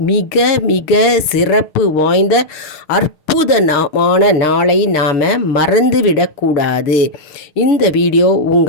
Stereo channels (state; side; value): late; right; 6.6 ms